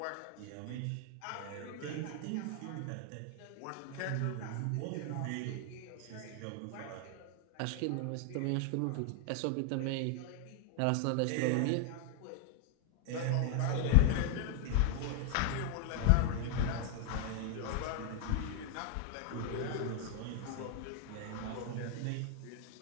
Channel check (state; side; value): different; both; correlation 0.00